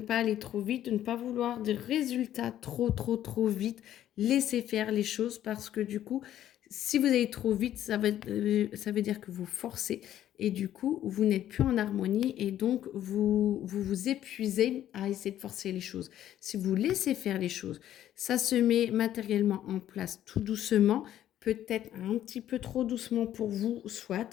aller trop vite, de ne pas vouloir des résultats trop vite. Laissez faire les choses parce que du coup, si vous allez trop vite, ça veut dire que vous forcez et du coup, vous n'êtes plus en harmonie et donc vous épuisez à essayer de forcer les choses. Si vous laissez faire les choses, ça se met matériellement en place tout doucement, peut-être un petit peu trop doucement pour vous,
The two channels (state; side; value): quieter; right; 11.8 dB